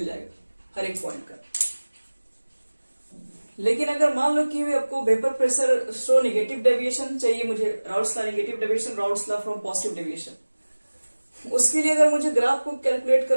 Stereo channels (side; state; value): both; inverted; correlation -1.00